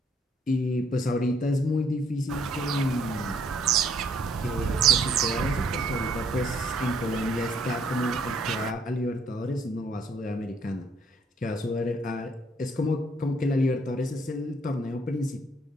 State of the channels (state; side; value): normal; both; correlation 0.67